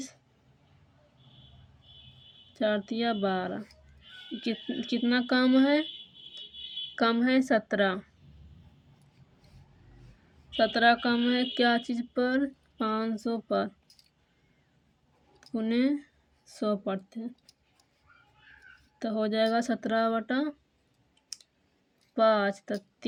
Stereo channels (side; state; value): both; identical; correlation 1.00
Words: 4 तिया 12। कितना कम है? कम है 17। 17 कम है क्या चीज़ पर? 500 पर, गुने 100 पर थे, तो हो जाएगा 17/5। तो